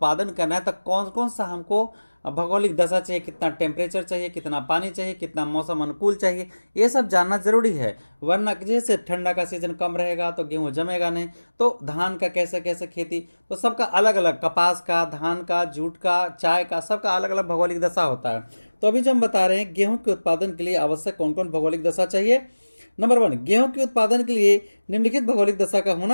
करना है तो कौन कौन सा हमको भौगोलिक दशा चाहिए, कितना टेम्परेचर चाहिए, कितना पानी चाहिए, कितना मौसम अनुकूल चाहिए, ये सब जानना जरूरी है। वरना जैसे ठंडा का सीजन कम रहेगा तो गेहूं जमेगा नहीं। तो धान का कैसे कैसे खेती, तो सबका अलग अलग, कपास का, धान का, जूट का, चाय का, सबका अलग अलग भौगोलिक दशा होता है। तो अभी जो हम बता रहे हैं गेहूं के उत्पादन के लिए आवश्यक कौन कौन भौगोलिक दशा चाहिए। नंबर 1, गेहूं के उत्पादन के लिए निम्नलिखित भौगोलिक दशा का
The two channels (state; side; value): inverted; both; correlation -1.00